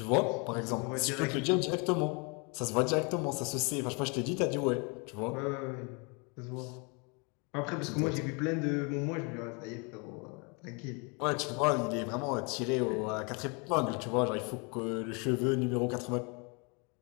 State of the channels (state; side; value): quieter; right; 32.3 dB